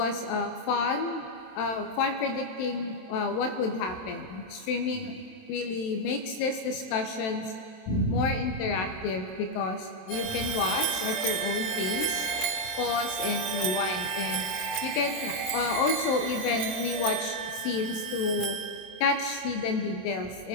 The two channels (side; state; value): right; late; 27 ms